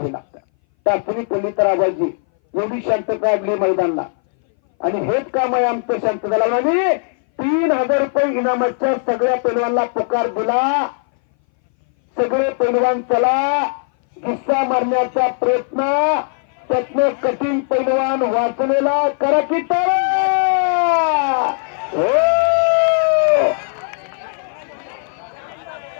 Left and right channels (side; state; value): right; silent; 61 dB below the other